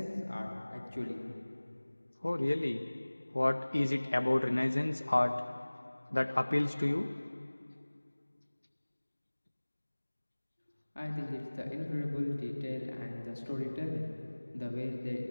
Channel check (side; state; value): both; inverted; correlation -1.00